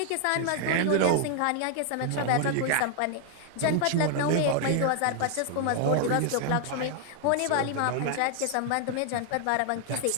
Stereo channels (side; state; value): both; different; correlation 0.00